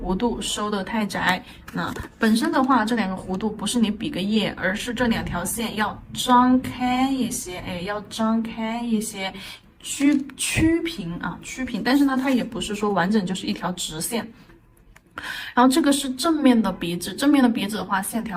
度收的太窄。那本身的话，这2个弧度不是你比个耶，而是这2条线要张开一些，哎，要张开一些，曲平啊，曲平。但是呢，它也不是说完整就是一条直线。然后这个是正面的鼻子，正面的鼻子的话，线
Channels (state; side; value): identical; both; correlation 1.00